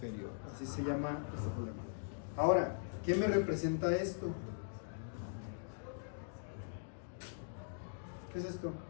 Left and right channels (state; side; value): silent; right; digital silence